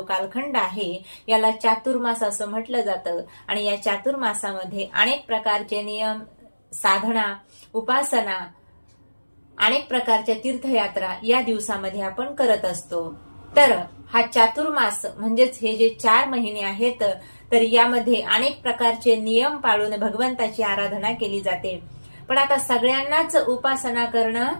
कालखंड आहे, याला चातुर्मास असं म्हटलं जातं. आणि या चातुर्मासामध्ये अनेक प्रकारचे नियम, साधना, उपासना, अनेक प्रकारच्या तीर्थयात्रा या दिवसामध्ये आपण करत असतो. तर हा चातुर्मास म्हणजेच हे जे 4 महिने आहेत, तर यामध्ये अनेक प्रकारचे नियम पाळून भगवंताची आराधना केली जाते. पण आता सगळ्यांनाच उपासना करणं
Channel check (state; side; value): inverted; both; correlation -1.00